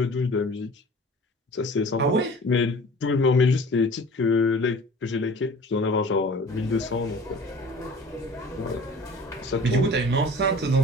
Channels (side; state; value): both; normal; correlation 0.44